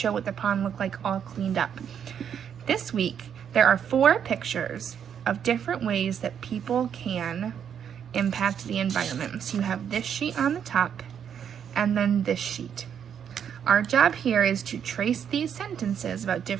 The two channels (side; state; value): left; quieter; 8.3 dB